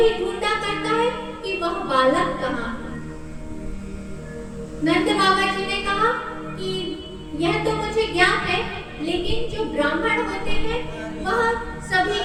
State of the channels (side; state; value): both; identical; correlation 1.00